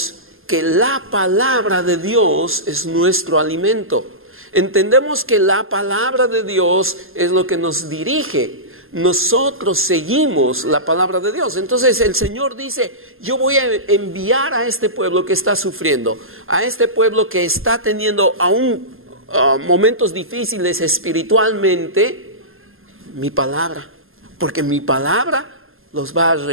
que la palabra de Dios es nuestro alimento. Entendemos que la palabra de Dios es lo que nos dirige. Nosotros seguimos la palabra de Dios. Entonces el Señor dice: yo voy a enviar a este pueblo que está sufriendo, a este pueblo que está teniendo aún momentos difíciles espiritualmente, mi palabra. Porque mi palabra los va a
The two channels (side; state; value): left; late; 0.60 ms